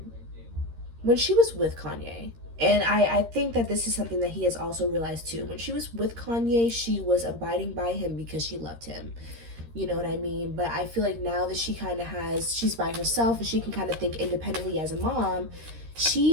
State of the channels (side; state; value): left; late; 13 ms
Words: Kanye, and I think that this is something that he has also realized too. When she was with Kanye, she was abiding by him because she loved him. You know what I mean? But I feel like now that she's by herself and she can kind of think independently as a mom,